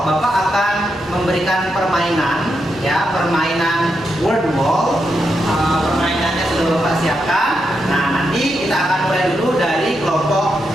Bapak akan memberikan permainan, ya, permainan word wall. Permainannya sudah Bapak siapkan. Nah, nanti kita akan mulai dulu dari kelompok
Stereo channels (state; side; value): normal; both; correlation 0.84